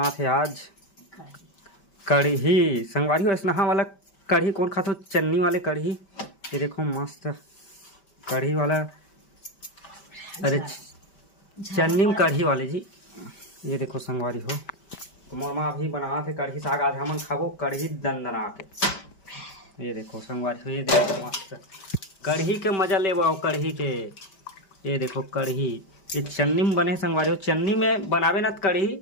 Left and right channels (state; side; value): late; right; 5.2 ms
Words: थे आज कढ़ी। संगवारी हो स्नेहा वाला कढ़ी कौन खातो? चन्नी वाले कढ़ी। ये देखो मस्त कढ़ी वाला, अरे चन्नी में कढ़ी वाले जी। ये देखो संगवारी हो तो मोर माँ अभी बना थे कढ़ी साग। आज हमन खाबो कढ़ी दंदना के। ये देखो संगवारी हो, ये देखो मस्त कढ़ी के मजा ले कढ़ी के। ये देखो कढ़ी ये चन्नी में बने संगवारी हो। चन्नी में बनावे ना कढ़ी